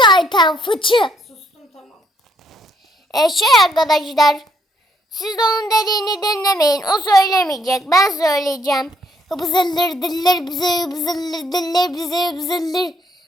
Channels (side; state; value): both; normal; correlation 0.70